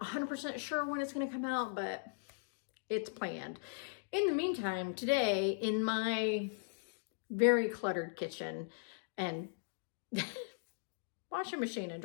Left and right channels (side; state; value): right; silent; digital silence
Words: 100% sure when it's going to come out, but it's planned. In the meantime, today in my very cluttered kitchen and washing machine and